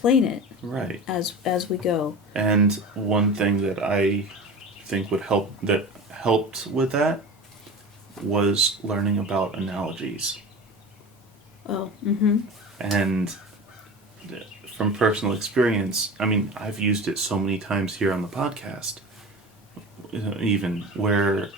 it. Right. As we go. And one thing that I think helped with that was learning about analogies. Oh. Mm-hmm. And from personal experience, I mean, I've used it so many times here on the podcast, even where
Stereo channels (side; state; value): both; normal; correlation 0.33